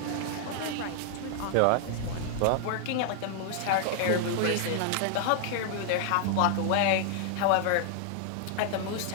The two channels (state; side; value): different; both; correlation 0.00